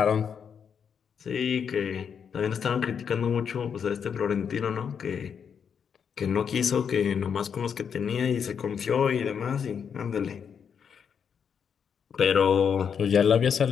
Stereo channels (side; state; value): right; quieter; 7.2 dB